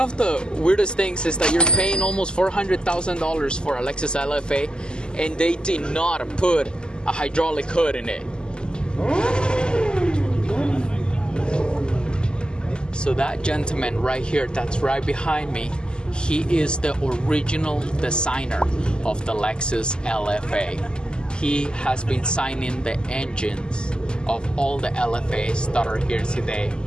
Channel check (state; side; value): late; right; 0.047 ms